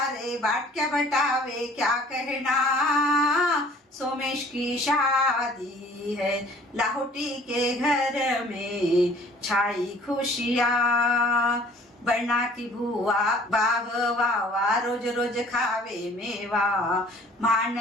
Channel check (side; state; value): both; normal; correlation 0.53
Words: बाटक्या बटावे क्या कहना सोमेश की शादी है लाहौटी के घर में छाई खुशियाँ बना की भुआ बाग वावा रोज रोज खावे मेवा मान